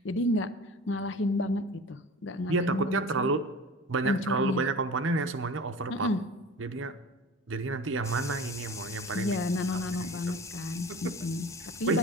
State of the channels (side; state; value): both; normal; correlation 0.38